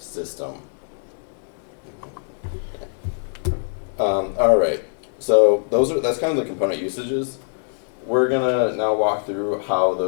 All right, so that's kind of the component usages. We're gonna now walk through how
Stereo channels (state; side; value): silent; right; digital silence